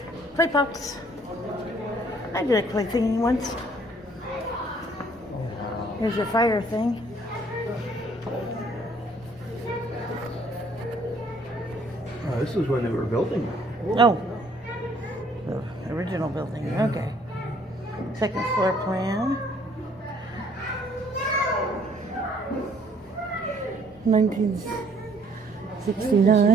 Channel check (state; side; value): normal; both; correlation 0.62